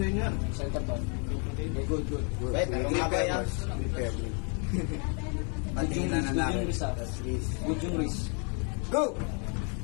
nyo yan. Center tone. Good. Wait, Flip mamaya. Patingin na namin. Good yung wrist. Go!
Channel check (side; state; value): right; quieter; 38.6 dB